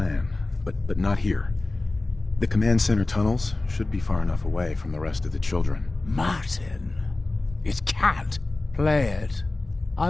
but not here. The command center tunnels should be far enough away from the rest of the children. Martin, it can't. Play it. I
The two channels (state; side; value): quieter; right; 3.1 dB